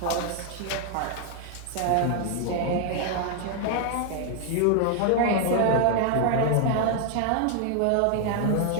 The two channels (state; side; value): different; both; correlation 0.00